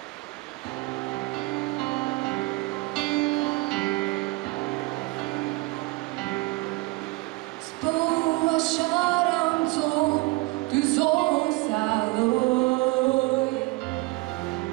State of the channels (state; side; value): quieter; left; 23.1 dB